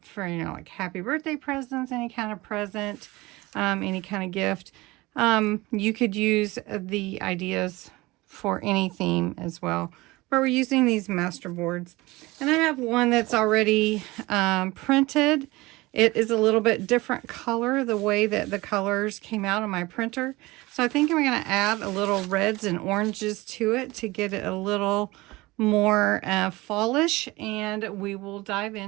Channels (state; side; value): quieter; left; 21.1 dB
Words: like happy birthday presents, any kind of present, any kind of gift. You could use the ideas for any theme as well. But we're using these master boards. And I have one that's already printed. It is a little bit different color, the way that the colors came out on my printer. So I think I'm going to add a little reds and oranges to it to get it a little more fallish, and we will dive